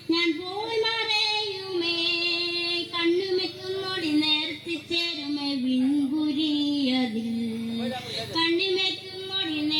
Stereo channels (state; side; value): identical; both; correlation 1.00